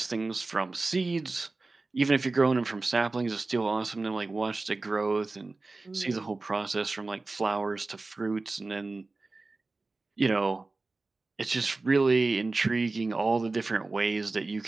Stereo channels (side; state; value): left; quieter; 3.5 dB